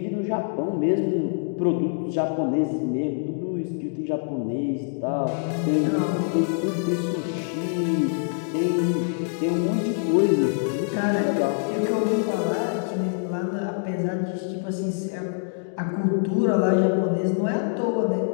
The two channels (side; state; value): right; silent; digital silence